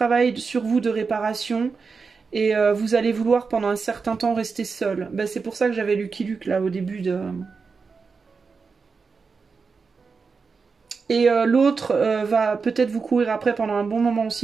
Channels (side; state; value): left; quieter; 5.0 dB